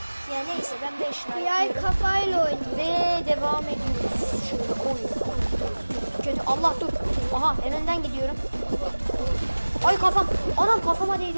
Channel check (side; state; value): both; inverted; correlation -1.00